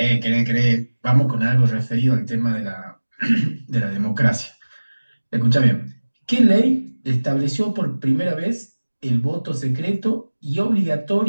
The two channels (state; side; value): inverted; both; correlation -1.00